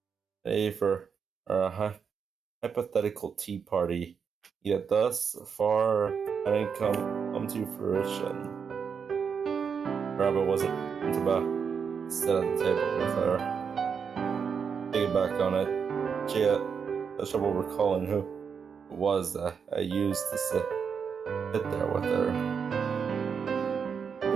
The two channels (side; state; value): left; quieter; 6.4 dB